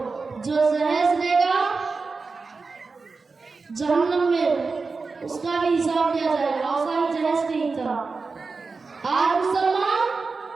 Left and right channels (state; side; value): quieter; left; 4.3 dB